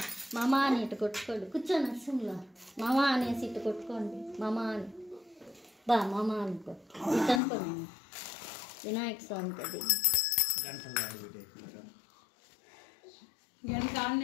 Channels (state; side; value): drops out; right; at 7.4 s